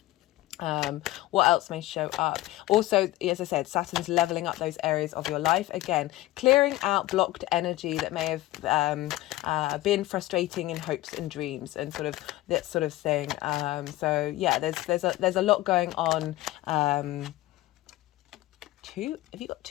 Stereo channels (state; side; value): quieter; right; 16.9 dB